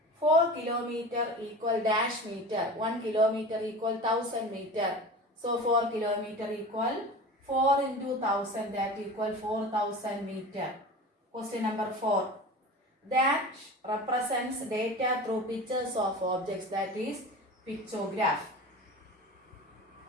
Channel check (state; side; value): normal; both; correlation 0.34